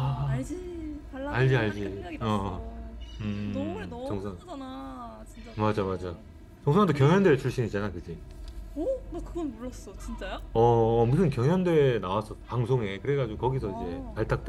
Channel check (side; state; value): both; identical; correlation 1.00